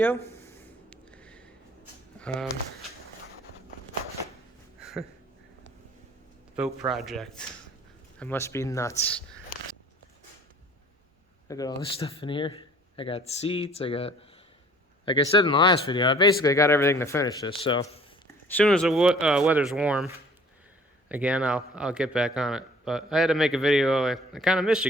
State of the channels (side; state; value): both; normal; correlation 0.52